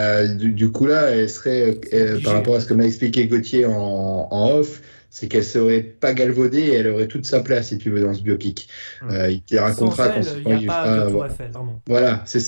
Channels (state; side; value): inverted; both; correlation -1.00